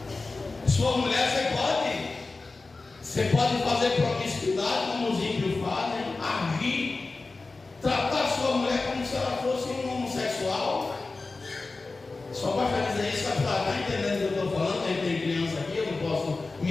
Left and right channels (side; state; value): right; quieter; 3.6 dB